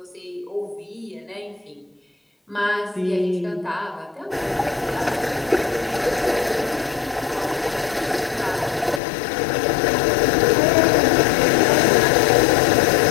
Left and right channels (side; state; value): right; drops out; at 9.0 s